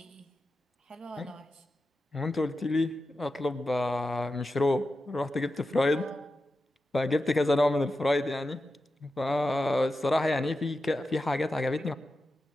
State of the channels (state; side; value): normal; both; correlation 0.91